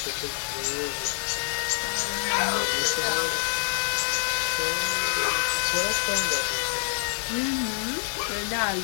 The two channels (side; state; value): right; silent; 61 dB below the other